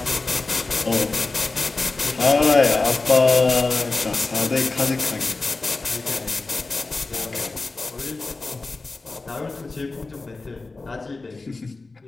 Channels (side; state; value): right; quieter; 3.6 dB